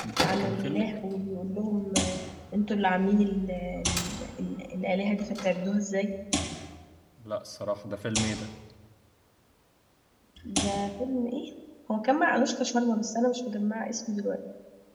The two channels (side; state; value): both; identical; correlation 1.00